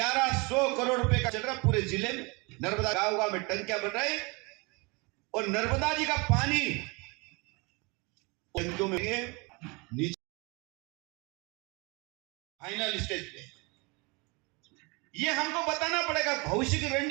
करोड़ रुपए का चल रहा पूरे जिले में। नर्मदा गांव गांव में टंकियां बन रही और नर्मदा जी का पानी टंकियों में नीचे फाइनल स्टेज पे। ये हमको बताना पड़ेगा, भविष्य की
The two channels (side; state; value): left; quieter; 28.1 dB